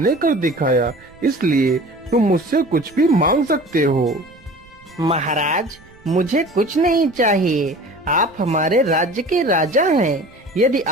कर दिखाया, इसलिए तुम मुझसे कुछ भी मांग सकते हो। महाराज, मुझे कुछ नहीं चाहिए। आप हमारे राज्य के राजा हैं। यदि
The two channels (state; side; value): noise; right; rumble, 26 dB below the sound